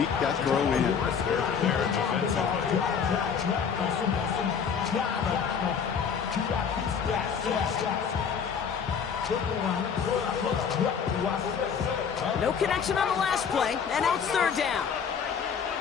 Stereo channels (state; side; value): quieter; right; 6.8 dB